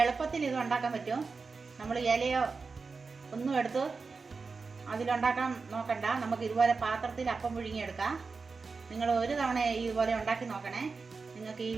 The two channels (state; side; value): quieter; left; 4.5 dB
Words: എളുപ്പത്തിൽ ഇത് ഉണ്ടാക്കാൻ പറ്റും. നമ്മൾ ഇലയോ ഒന്നും എടുത്ത് അതിലുണ്ടാക്കാൻ നോക്കണ്ട. നമുക്ക് ഇതുപോലെ പാത്രത്തിൽ അപ്പം പുഴുങ്ങിയെടുക്കാം. നിങ്ങൾ ഒരു തവണ ഇതുപോലെ ഉണ്ടാക്കി നോക്കണേ. നിങ്ങൾക്ക് ഈ